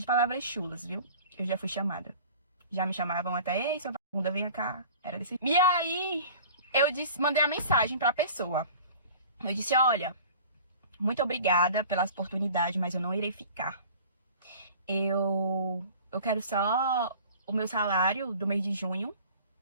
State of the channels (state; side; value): inverted; both; correlation -0.44